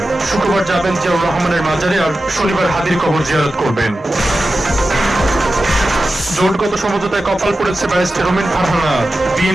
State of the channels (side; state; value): both; normal; correlation 0.93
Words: শুক্রবার যাবেন জিয়াউর রহমানের মাজারে, আর শনিবার হাদির কবর জিয়ারত করবেন। জোটগত সমঝোতায় কপাল পড়েছে ব্যারিস্টার রুমিন ফারহানা।